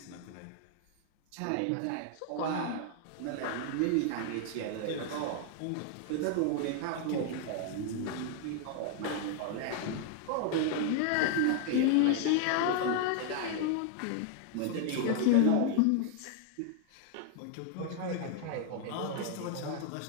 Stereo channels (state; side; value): different; both; correlation 0.00